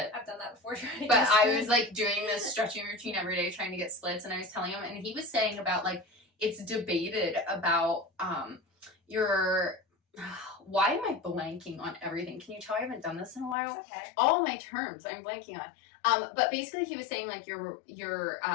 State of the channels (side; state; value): right; drops out; at 13.6 s